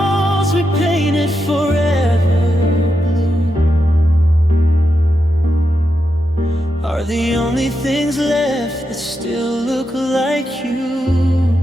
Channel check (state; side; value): normal; both; correlation 0.86